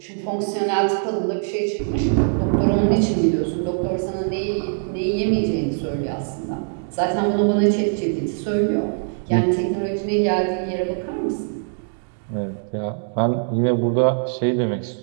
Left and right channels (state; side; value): silent; left; digital silence